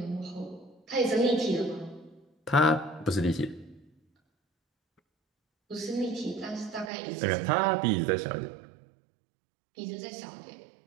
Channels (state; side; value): drops out; left; at 6.9 s